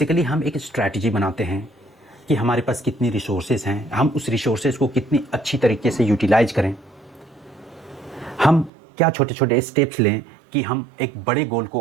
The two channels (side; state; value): left; drops out; at 8.7 s